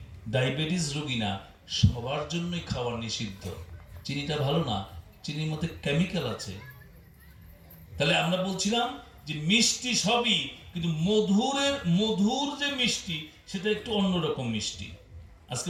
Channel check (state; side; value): identical; both; correlation 1.00